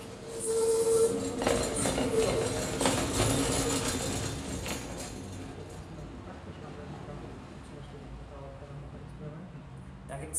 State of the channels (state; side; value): identical; both; correlation 1.00